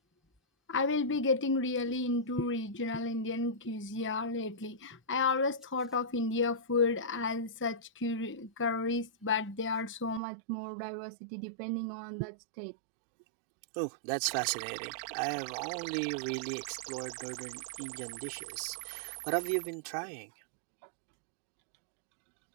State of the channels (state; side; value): drops out; left; at 10.2 s